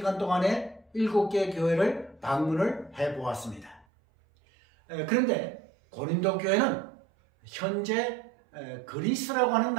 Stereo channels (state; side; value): drops out; left; at 3.9 s